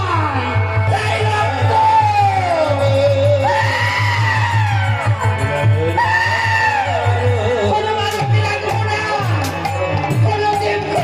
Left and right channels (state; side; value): identical; both; correlation 1.00